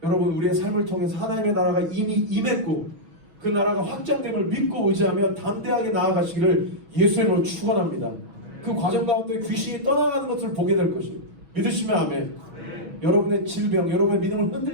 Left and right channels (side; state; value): left; late; 6.2 ms